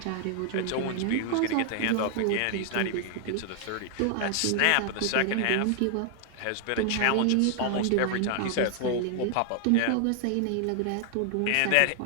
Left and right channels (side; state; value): both; different; correlation 0.00